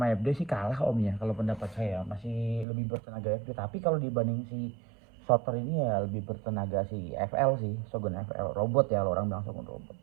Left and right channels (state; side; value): drops out; left; at 2.7 s